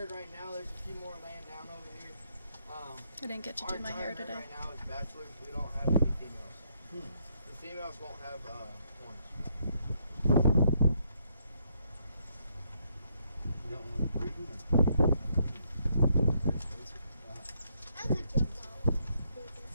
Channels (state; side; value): inverted; both; correlation -0.74